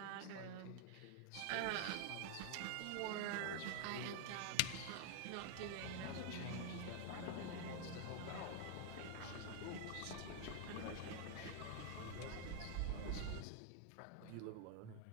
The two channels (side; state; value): both; different; correlation 0.00